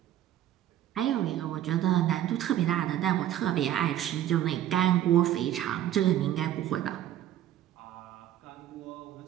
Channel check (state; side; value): quieter; left; 12.0 dB